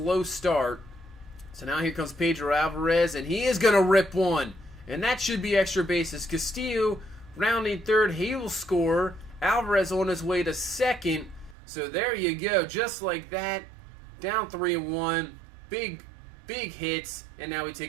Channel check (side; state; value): left; drops out; at 11.6 s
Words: start. So now here comes Pedro Alvarez, and he is going to rip one, and that should be extra bases. Castillo rounding third, he will score. Alvarez on his way to second. So there you go, just like that. Down 3-1, big hits, and now we